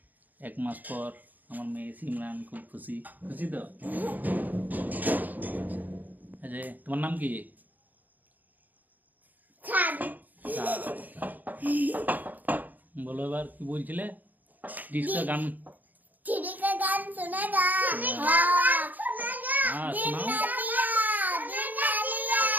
1 মাস পর। আমার মেয়ে সিমরান খুব খুশি খুশি তো। আচ্ছা, তোমার নাম কি? বলো এবার কি বলছিলে? ডিস্কা গান सुनेगा हाँ सुनाओ।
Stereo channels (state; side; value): late; left; 0.083 ms